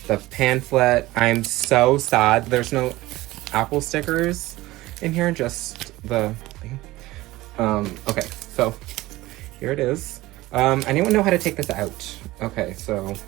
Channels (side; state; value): left; quieter; 18.3 dB